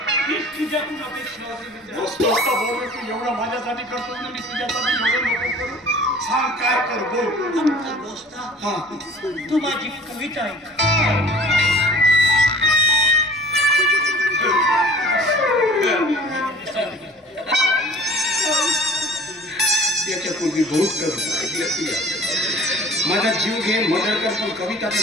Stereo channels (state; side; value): normal; both; correlation 0.47